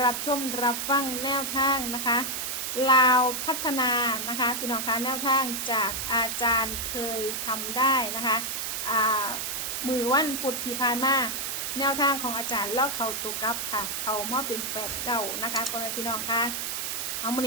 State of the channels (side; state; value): right; noise; hiss, 3 dB below the sound